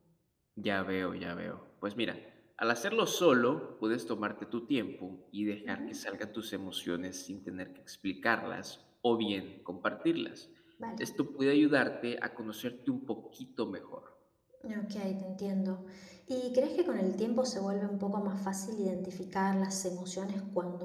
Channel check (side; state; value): both; identical; correlation 1.00